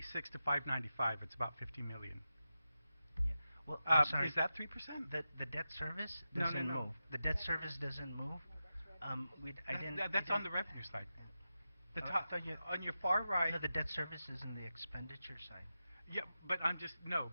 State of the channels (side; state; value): both; inverted; correlation -0.91